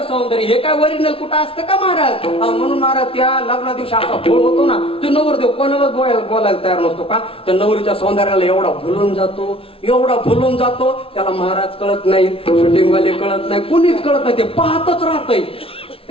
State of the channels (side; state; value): right; late; 0.26 ms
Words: सौंदर्य, हे काय ओरिजिनल कुठं असतं का महाराज. म्हणून महाराज त्या लग्ना दिवशी असा भोळ होतो ना, तो नवरदेव कोणालाच बोलायला तयार नसतो का. त्या नवरीच्या सौंदर्याला एवढा भुलून जातो, एवढा भुलून जातो. त्याला महाराज कळत नाही, शूटिंगवाले कळत नाही, कुणीच कळत नाही, ते पाहतच राहतय.